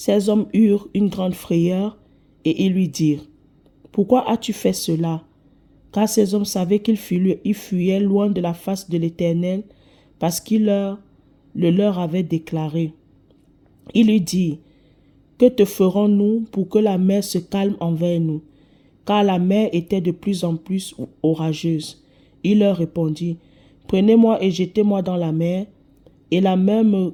hommes eurent une grande frayeur et ils lui dirent, « Pourquoi as-tu fait cela? » Car ces hommes savaient qu'ils fuyaient loin de la face de l'Éternel parce qu'il le leur avait déclaré. Il lui dit, « Que te ferons-nous pour que la mer se calme envers nous? » Car la mer était de plus en plus orageuse. Il leur répondit, « Prenez-moi et jetez-moi dans la mer, et la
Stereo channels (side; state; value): both; identical; correlation 1.00